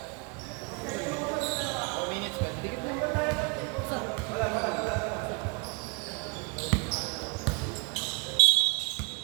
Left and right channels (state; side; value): quieter; left; 32.1 dB